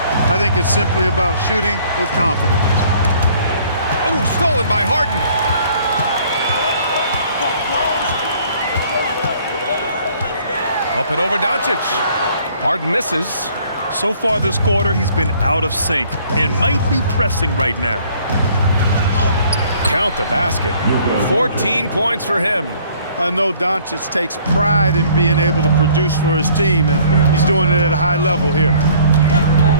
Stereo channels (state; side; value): inverted; both; correlation -0.57